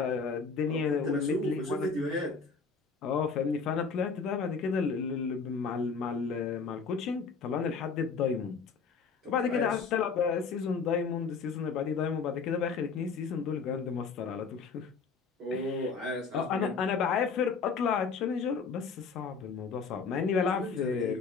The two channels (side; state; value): right; quieter; 5.2 dB